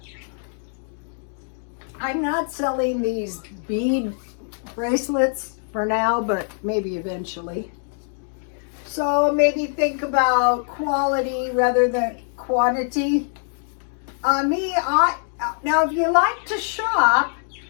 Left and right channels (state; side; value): silent; right; digital silence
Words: I'm not selling these bead bracelets for now, but maybe eventually. So maybe think about quality rather than quantity. Now if you like to shop,